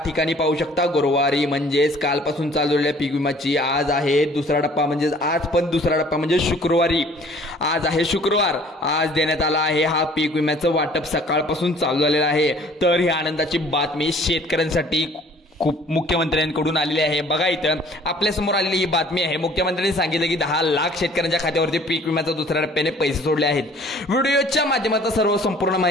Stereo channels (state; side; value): normal; both; correlation 0.54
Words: ठिकाणी पाहू शकता गुरुवारी म्हणजेच कालपासून चालू झालेल्या पीक विमाची आज आहे दुसरा टप्पा, म्हणजेच आज पण दुसरा टप्पा म्हणजे शुक्रवारी। आज आहे शुक्रवार, आज देण्यात आला आहे हा पीक विम्याचं वाटप सकाळपासून चालू झालेलं आहे। तर ही आनंदाची बातमी शेतकऱ्यांसाठी खूप मुख्यमंत्र्यांकडून आलेली आहे। बघा इथं आपल्या समोर आलेली ही बातमी आहे। मुख्यमंत्र्यांनी सांगितलं की 10 लाख शेतकऱ्यांच्या खात्यावरती पीक विम्याचा दुसऱ्या टप्प्याने पैसे सोडले आहेत। व्हिडिओच्या माध्यमातून सर्व संपूर्ण